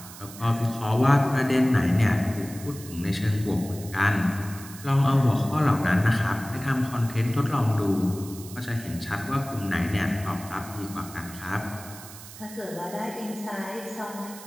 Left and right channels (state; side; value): noise; right; hiss, 16 dB below the sound